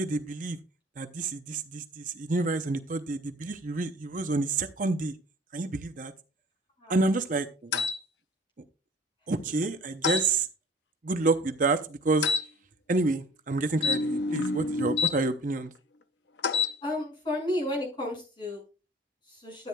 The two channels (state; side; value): normal; both; correlation 0.46